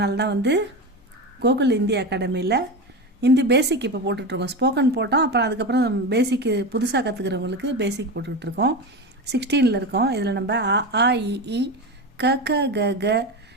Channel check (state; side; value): normal; both; correlation 0.21